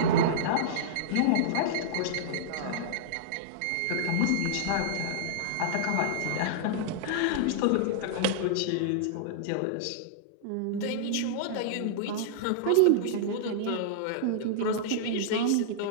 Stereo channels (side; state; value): both; different; correlation -0.02